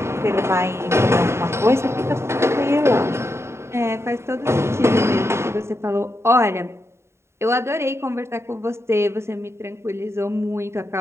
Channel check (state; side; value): late; left; 0.13 ms